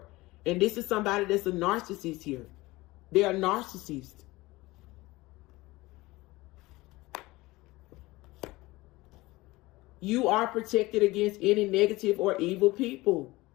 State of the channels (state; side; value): quieter; right; 20.3 dB